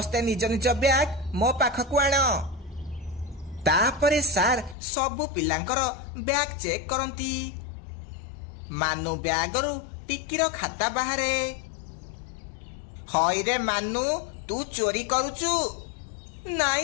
निज निज बैग मो पाखकू आण। तापरे सार सबु पिलांकर बैग चेक करंती। मानु बैगरु टिकीर खाता बाहरे। हई रे मानु तू चोरी करूचु।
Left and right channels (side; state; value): right; drops out; at 4.8 s